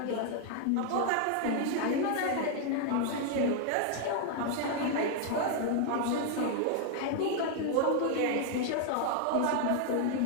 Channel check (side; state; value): both; different; correlation 0.00